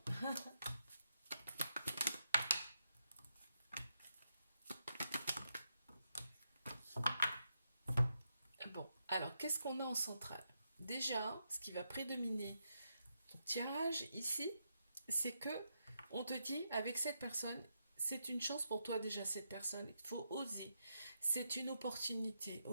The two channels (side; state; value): both; inverted; correlation -0.82